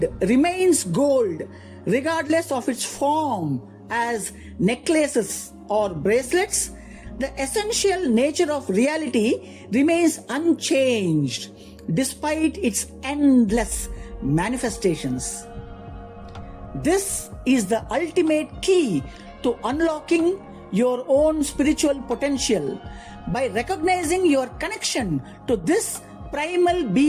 remains gold regardless of its form as necklaces or bracelets, the essential nature of reality remains unchanged despite its endless manifestations. This is the ultimate key to unlocking your own spiritual potential. By recognizing your connection to this primal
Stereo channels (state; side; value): identical; both; correlation 1.00